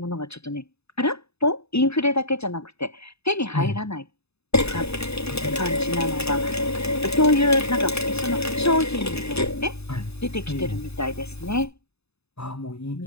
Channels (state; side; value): late; right; 0.79 ms